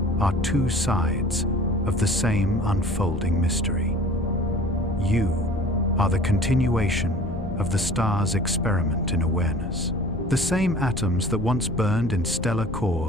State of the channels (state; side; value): noise; left; rumble, 7 dB below the sound